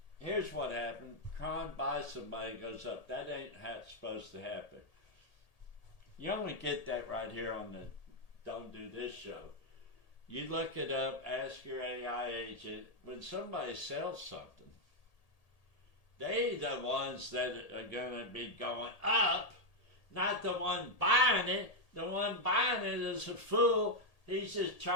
Here's what happened. Kron buys somebody, goes up. That ain't how it's supposed to happen. You only get that right here on the Don't Do This show. You look it up, ask your AI agent. When somebody sells something, they the ones that are going to be going up, not the one buying it. The one buying it is a fool. He's just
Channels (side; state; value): right; late; 1.8 ms